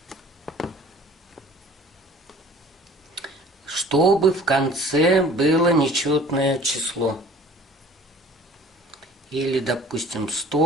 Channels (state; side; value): normal; both; correlation 0.49